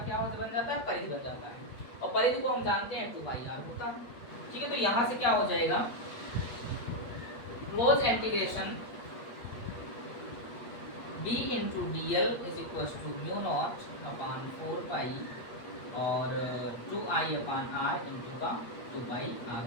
बन जाता है परिधि बन जाता है, और परिधि को हम जानते हैं 2πr होता है, ठीक है। तो यहाँ से क्या हो जाएगा close integration b into dl is equal to mu naught upon 4 pi और 2I अपान r इंटू का 2πr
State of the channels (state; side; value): late; right; 8.4 ms